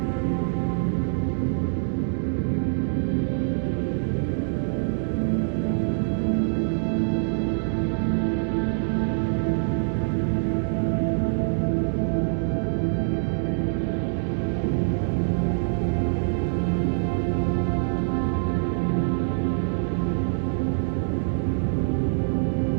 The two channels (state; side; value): silent; left; digital silence